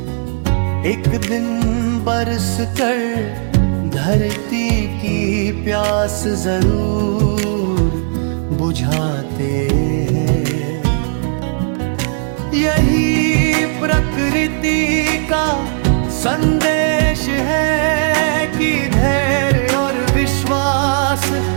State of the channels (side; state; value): left; silent; 69 dB below the other